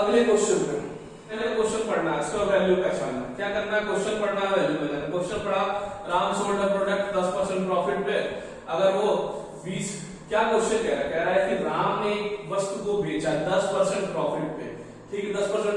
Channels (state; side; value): identical; both; correlation 1.00